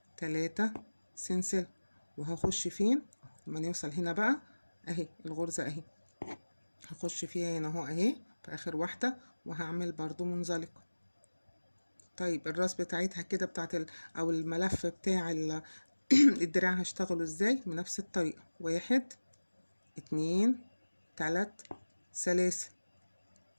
3 سلسلة، وهخش فين؟ لما نوصل هنا بقى اهي الغرزة اهي، هخش فيها هنا اهو اهي في اخر واحدة، وهعمل برضو منزلقة. طيب الراس بتاعتها كده بتاعت او الملف بتاع الدراع هشتغله ازاي؟ بنفس الطريقة. 1 2 3 سلاسل،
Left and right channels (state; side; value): inverted; both; correlation -1.00